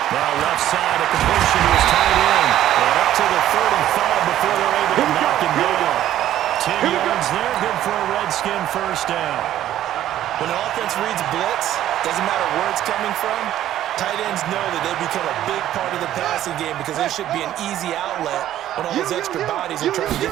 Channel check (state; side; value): quieter; left; 12.5 dB